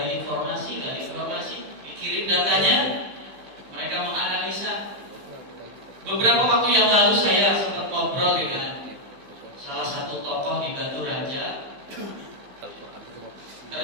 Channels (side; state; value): left; late; 15 ms